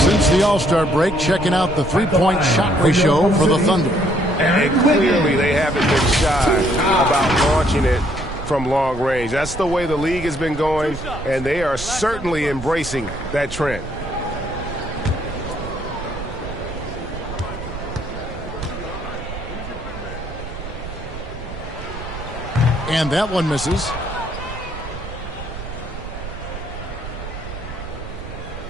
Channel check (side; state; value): right; noise; rumble, 10 dB below the sound